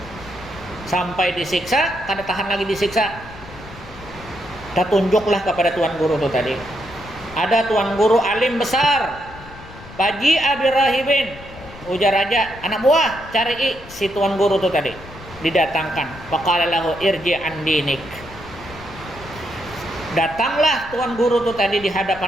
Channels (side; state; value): left; noise; rumble, 17 dB below the sound